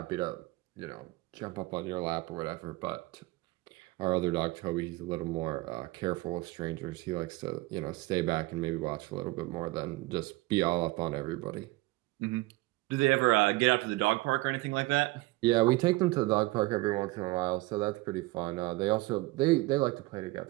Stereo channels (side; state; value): left; quieter; 21.0 dB